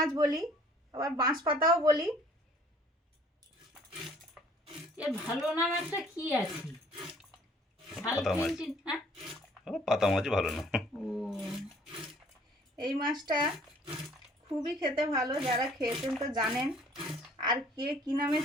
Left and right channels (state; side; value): normal; both; correlation 0.57